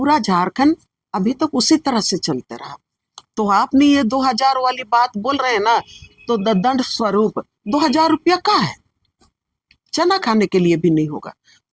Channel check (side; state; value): both; identical; correlation 1.00